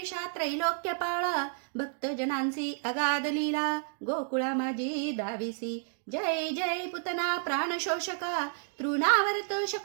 त्रैलोक्य पाळा, भक्तजनांची अगाध लीला, गोकुळा माझी दाविसी। जय जय पुतना प्राणशोषका, तृणावर्त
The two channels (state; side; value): silent; left; digital silence